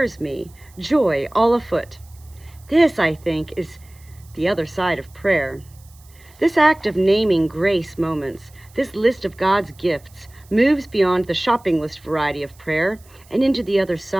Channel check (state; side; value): noise; right; hiss, 28 dB below the sound